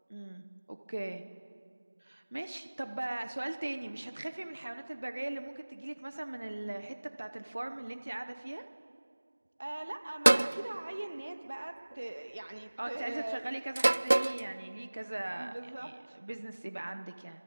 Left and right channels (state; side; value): inverted; both; correlation -1.00